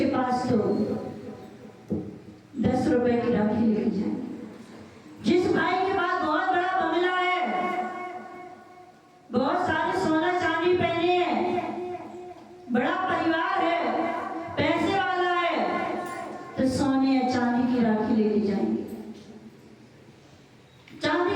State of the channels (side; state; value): both; identical; correlation 1.00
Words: पास तो 10 रुपए की राखी लेके जाएंगे। जिस भाई के पास बहुत बड़ा बंगला है, बहुत सारे सोना चांदी पहने हैं, बड़ा परिवार है, पैसे वाला है, तो सोने या चांदी की राखी लेके जाएंगे। चांदी